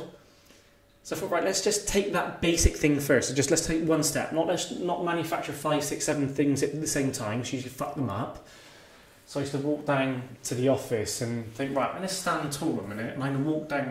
So I thought, right, let's just take that basic thing first. So let's take one step. Let's not manufacture 5, 6, 7 things at the same time. So you usually fuck them up. So I used to walk down to the office and think, right, I'm going to stand tall a minute. And I'm going to walk down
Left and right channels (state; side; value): identical; both; correlation 1.00